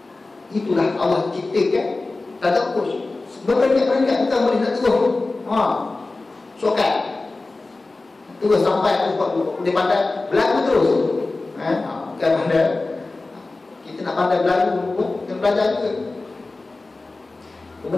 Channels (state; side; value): quieter; right; 3.3 dB